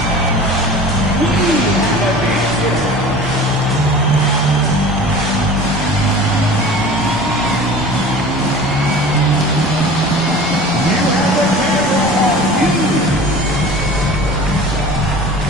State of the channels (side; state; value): both; normal; correlation 0.40